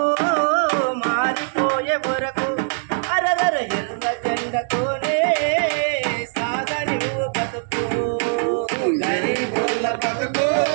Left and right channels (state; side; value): silent; left; digital silence